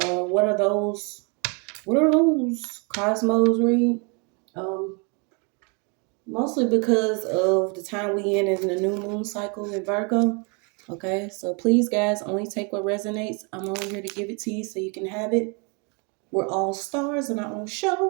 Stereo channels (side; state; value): left; quieter; 34.2 dB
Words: what are those cosmos read? Mostly because of the time we in the new moon cycle in Virgo. Okay, so please, guys, only take what resonates. I'm only here to give it to you so you can have it. We're all stars in our own